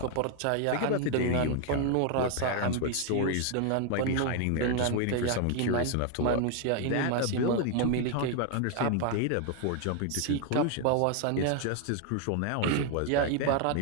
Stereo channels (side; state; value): both; different; correlation 0.01